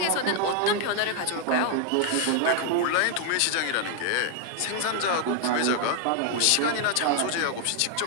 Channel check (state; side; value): different; both; correlation 0.00